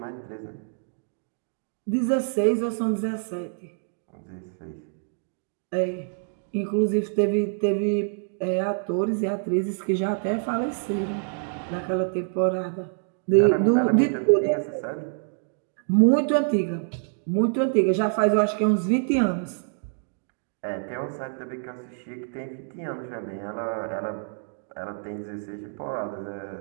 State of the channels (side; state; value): left; silent; digital silence